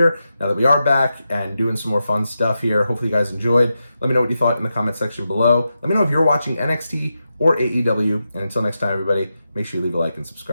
now that we are back and doing some more fun stuff here. Hopefully you guys enjoyed. Let me know what you thought in the comment section below. Let me know if you're watching NXT or AEW. And until next time, everybody, make sure you leave a like and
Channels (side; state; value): both; inverted; correlation -0.89